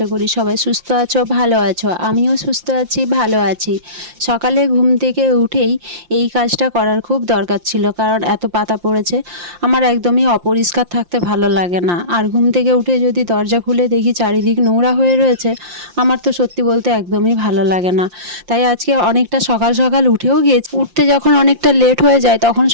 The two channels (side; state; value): left; late; 5.7 ms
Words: করি সবাই সুস্থ আছো, ভালো আছো। আমিও সুস্থ আছি, ভালো আছি। সকালে ঘুম থেকে উঠেই এই কাজটা করার খুব দরকার ছিল, কারণ এত পাতা পড়েছে। আমার একদমই অপরিষ্কার থাকতে ভালো লাগে না, আর ঘুম থেকে উঠে যদি দরজা খুলে দেখি চারিদিক নোংরা হয়ে রয়েছে, আমার তো সত্যি বলতে একদমই ভালো লাগে না। তাই আজকে অনেকটা সকাল সকাল উঠেও গিয়েছি। উঠতে যখন অনেকটা লেট হয়ে যায় তখন